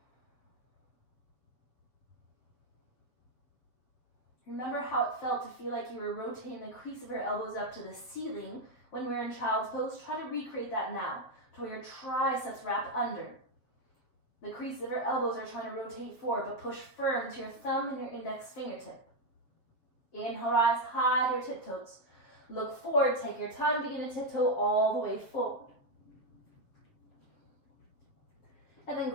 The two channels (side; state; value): right; late; 7.8 ms